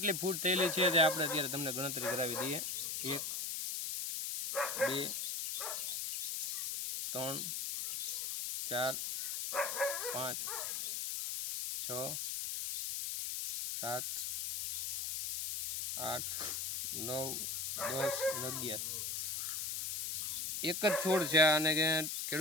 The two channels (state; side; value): noise; left; hiss, 1 dB below the sound